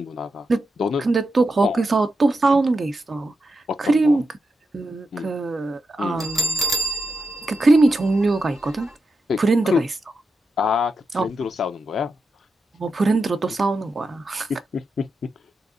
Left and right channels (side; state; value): both; normal; correlation 0.87